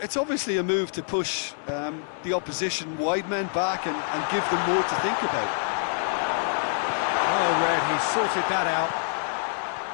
it's obviously a move to push the opposition wide men back and give them more to think about. Oh, Red, he sorted that out.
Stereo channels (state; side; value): silent; right; digital silence